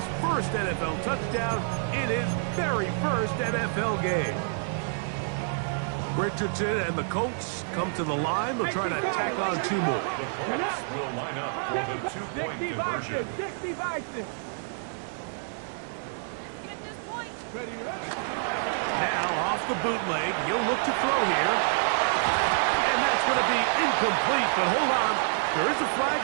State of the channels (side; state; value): left; silent; digital silence